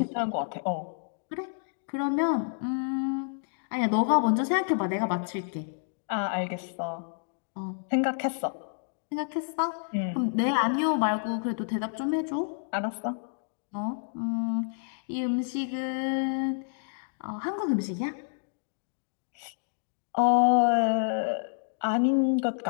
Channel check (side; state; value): right; silent; digital silence